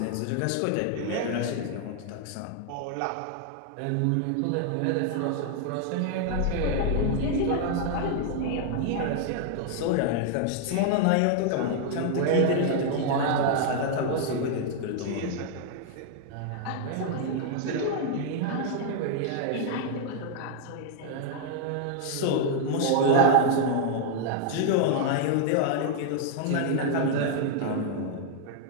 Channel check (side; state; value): both; different; correlation 0.00